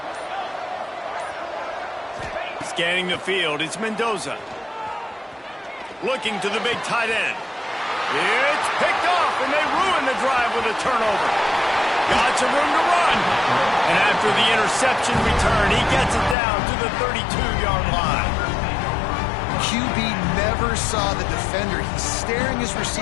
Scanning the field, it's Mendoza. Looking to the big tight end. It's picked off, and they ruin the drive with a turnover. Got some room to run. And after the interception return, he gets it down to the 32-yard line. QB never saw the defender. He's staring his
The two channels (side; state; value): right; drops out; at 16.4 s